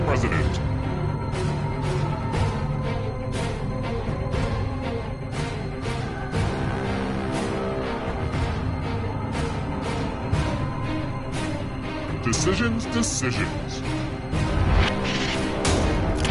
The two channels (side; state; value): both; identical; correlation 1.00